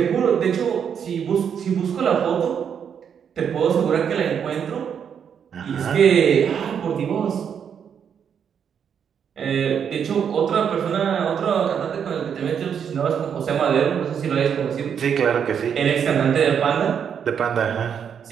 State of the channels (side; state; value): left; quieter; 7.7 dB